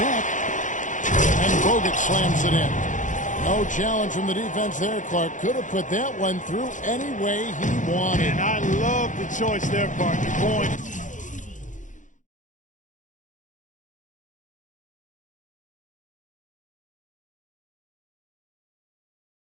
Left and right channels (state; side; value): late; right; 0.37 ms